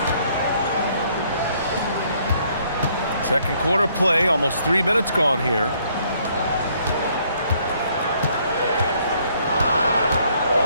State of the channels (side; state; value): both; inverted; correlation -0.66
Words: Second quarter play, almost 3 minutes gone here.